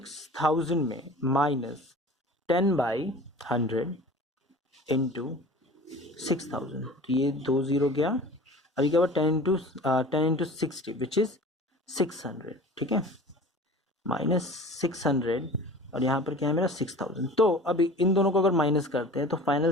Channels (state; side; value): normal; both; correlation 0.41